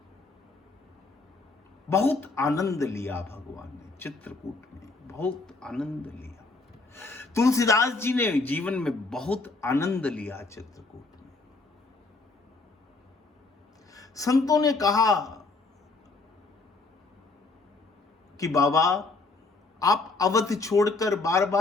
बहुत आनंद लिया भगवान ने चित्रकूट में, बहुत आनंद लिया। तुलसीदास जी ने जीवन में बहुत आनंद लिया चित्रकूट में। संतों ने कहा कि बाबा आप अवध छोड़कर बार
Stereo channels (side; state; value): right; quieter; 3.6 dB